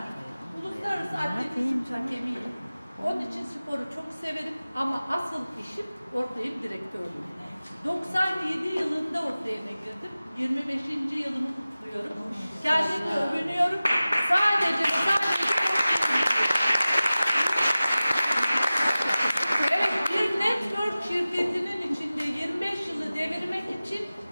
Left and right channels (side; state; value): both; inverted; correlation -0.97